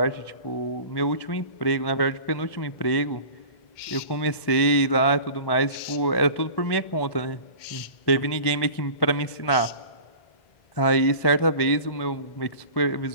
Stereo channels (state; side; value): late; right; 1.2 ms